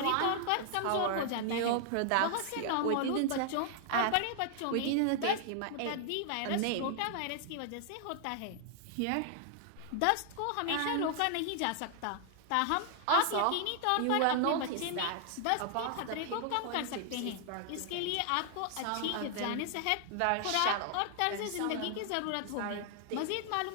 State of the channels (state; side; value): different; both; correlation 0.00